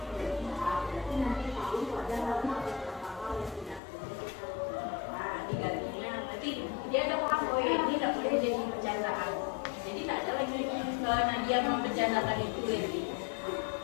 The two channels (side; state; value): right; drops out; at 3.8 s